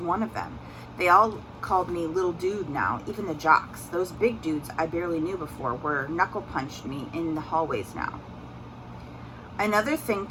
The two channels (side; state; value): both; identical; correlation 1.00